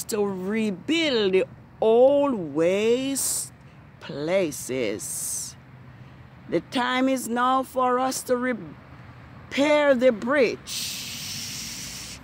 to rebuild the old waste places. The time is now for us to repair the breach.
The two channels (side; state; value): both; identical; correlation 1.00